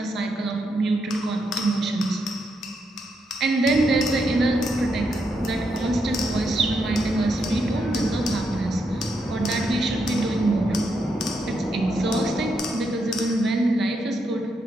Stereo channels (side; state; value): both; normal; correlation 0.81